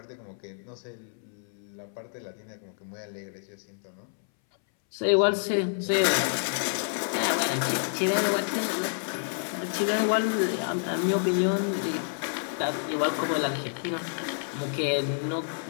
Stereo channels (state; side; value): silent; right; 59 dB below the other